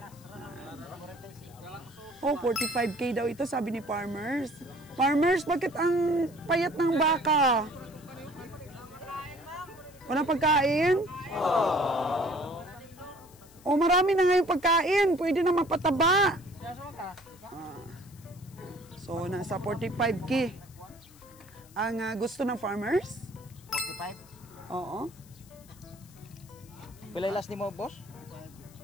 Oh, 45K daw ito, sabi ni Farmers. Farmers, bakit ang payat ng baka? Walang pagkain? Oh, marami na ngayon pagkain. Pwede na mapataba. So, nasa 45K. Ang gusto ng Farmers? 45? Oo. Pilay last ni mo, boss?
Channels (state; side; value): noise; left; hiss, 25 dB below the sound